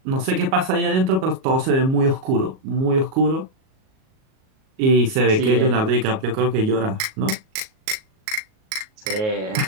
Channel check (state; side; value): late; left; 37 ms